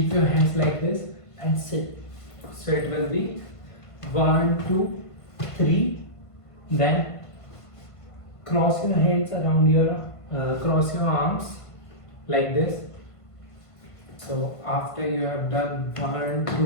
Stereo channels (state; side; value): late; right; 1.5 ms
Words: your hands like this and sit. So it will be 1, 2, 3. Then cross your hands around your cross your arms like this. So after you have done 1,